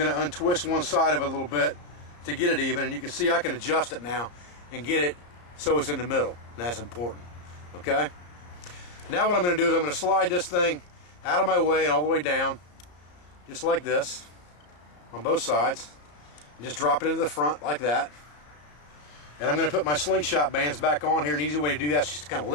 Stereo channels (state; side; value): late; right; 34 ms